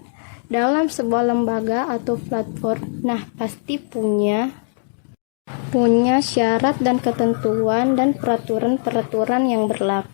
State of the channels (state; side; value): silent; right; digital silence